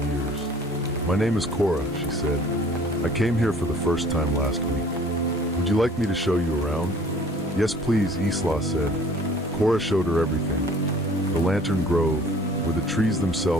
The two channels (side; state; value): both; normal; correlation 0.52